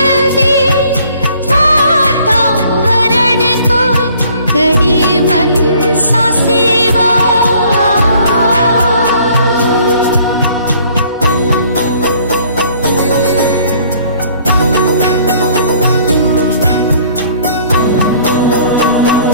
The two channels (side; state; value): both; inverted; correlation -0.58